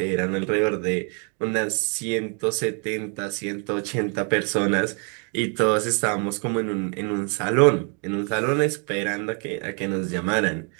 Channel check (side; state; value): left; quieter; 38.4 dB